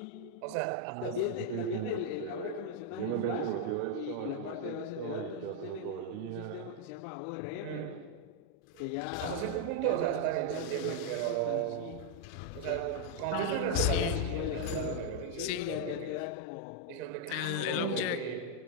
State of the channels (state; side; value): different; both; correlation 0.00